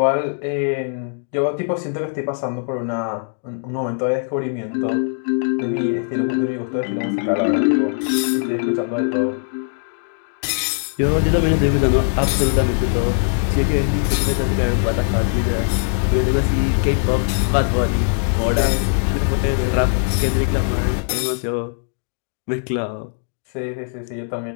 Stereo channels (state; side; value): silent; right; digital silence